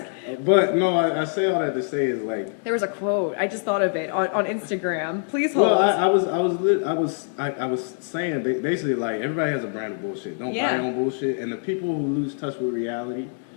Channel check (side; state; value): right; silent; digital silence